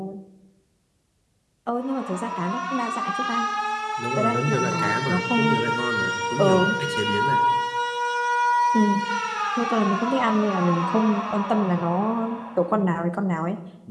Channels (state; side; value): identical; both; correlation 1.00